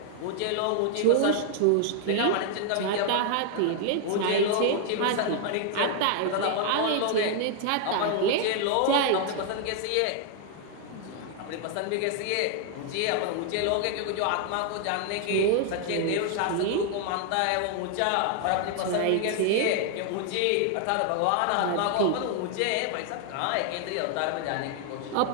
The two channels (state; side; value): different; both; correlation 0.00